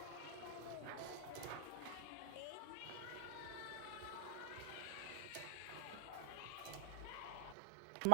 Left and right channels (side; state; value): both; different; correlation 0.00